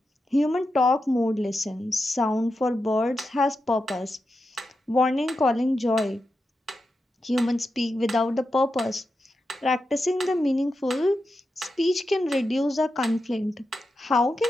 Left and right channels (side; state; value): both; normal; correlation 0.89